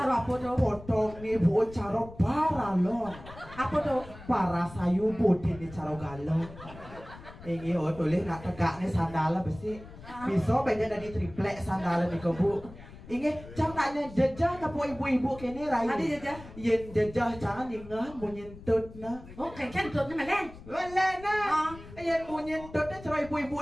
apa tuh? Potong nih bu cara paralon. Apa tuh? Para sayu putih nih cara galon. Ini tulis nak tegak nih sandala besi. Bisa banyak dari triplek sandala nih ke bu. Inge, jangan nanya jejah tapi ibu-ibu kini rai. Ada jejah? Yen jejah jangan ingat mau nyentut na. Oh, keken tutnya melen. Melen na. Yen mau nyentut na cara ibu-ibu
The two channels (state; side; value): noise; left; rumble, 17 dB below the sound